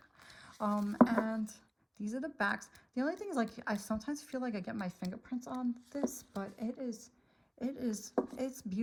And these are the backs. The only thing is, like, I sometimes feel like I get my fingerprints on this, but it's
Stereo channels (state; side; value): identical; both; correlation 1.00